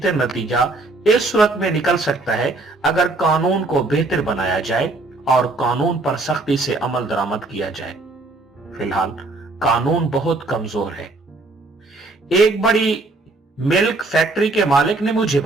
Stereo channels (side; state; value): left; quieter; 3.2 dB